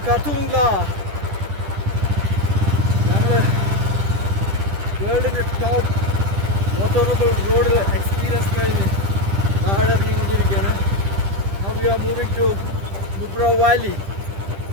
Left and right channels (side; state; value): left; late; 10 ms